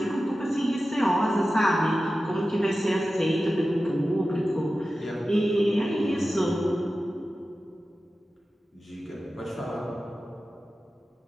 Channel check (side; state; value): both; normal; correlation 0.94